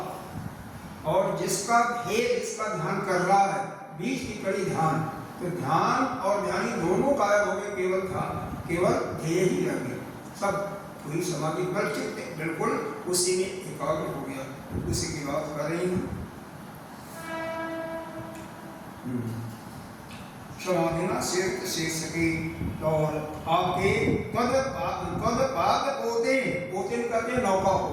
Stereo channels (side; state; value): both; identical; correlation 1.00